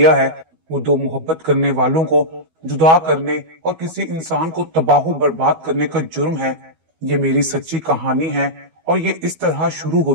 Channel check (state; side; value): late; left; 12 ms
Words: है, वो 2 मोहब्बत करने वालों को जुदा करने और किसी इंसान को तबाह बर्बाद करने का जुर्म है। ये मेरी सच्ची कहानी है और ये इस तरह शुरू